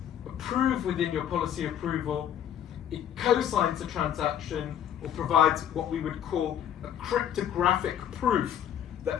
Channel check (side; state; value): right; quieter; 10.0 dB